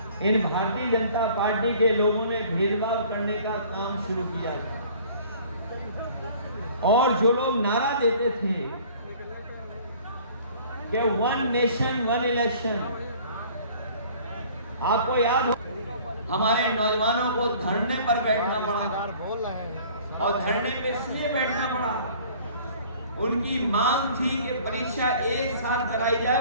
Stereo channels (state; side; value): inverted; both; correlation -0.51